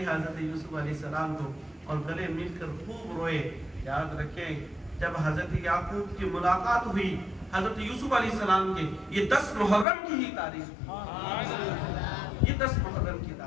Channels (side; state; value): right; drops out; at 9.9 s